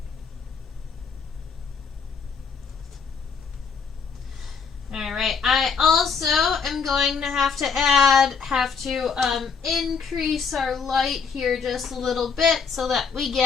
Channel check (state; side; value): quieter; right; 5.8 dB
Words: Alright, I also am going to have to increase our light here just a little bit so that we